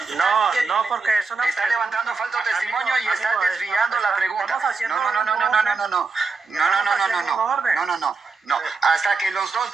porque es una Está pregunta. levantando falso testimonio y está Amigo, desviando la pregunta. estamos haciendo No. Hasta que los dos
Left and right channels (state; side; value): quieter; left; 4.5 dB